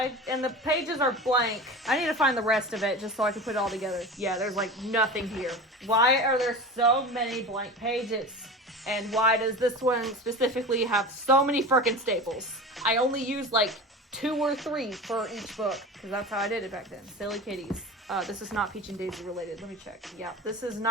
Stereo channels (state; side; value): normal; both; correlation 0.31